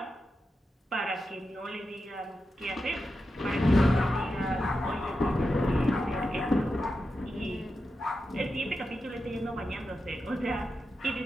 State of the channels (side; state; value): both; normal; correlation 0.89